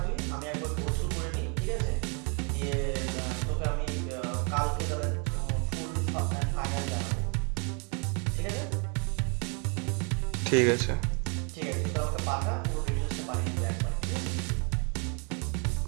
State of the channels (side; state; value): left; quieter; 36.1 dB